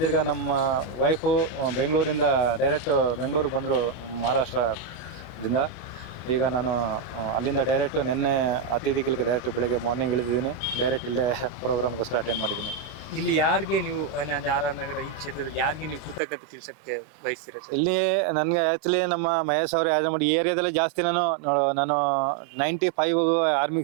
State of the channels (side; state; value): left; drops out; at 16.2 s